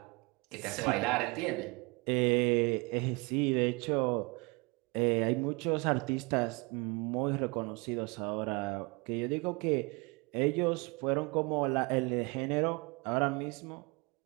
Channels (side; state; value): left; quieter; 27.7 dB